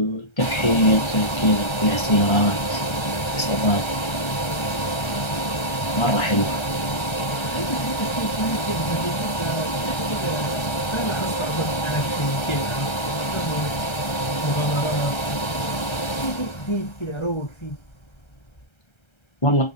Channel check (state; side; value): late; right; 1.3 ms